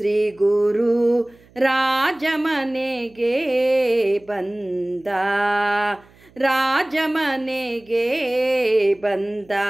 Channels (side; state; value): right; noise; hum, 28 dB below the sound